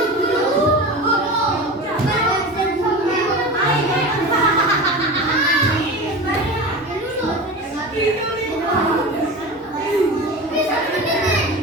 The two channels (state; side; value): normal; both; correlation 0.30